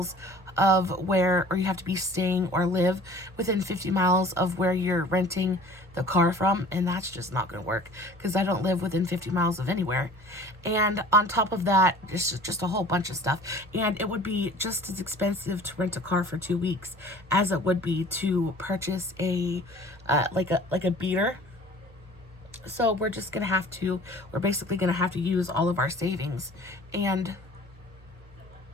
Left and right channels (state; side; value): normal; both; correlation 0.47